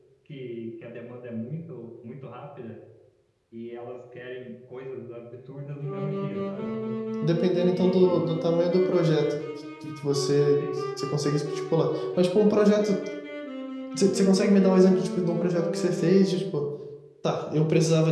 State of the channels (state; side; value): identical; both; correlation 1.00